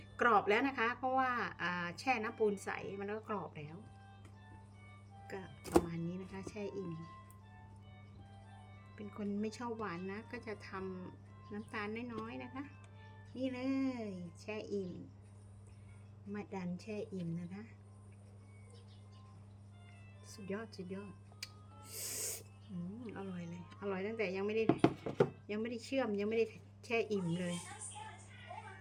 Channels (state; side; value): identical; both; correlation 1.00